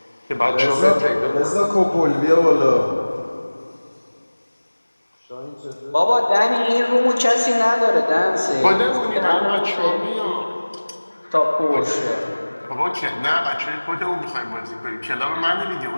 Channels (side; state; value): both; inverted; correlation -1.00